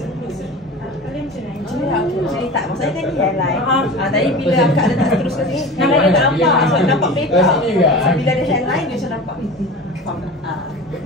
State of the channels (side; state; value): both; normal; correlation 0.34